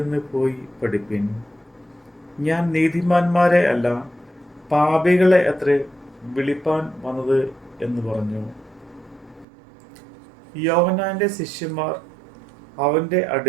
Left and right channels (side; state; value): left; drops out; at 9.5 s